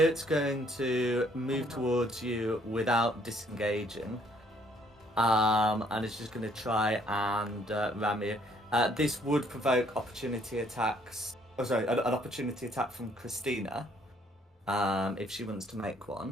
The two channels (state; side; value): normal; both; correlation 0.64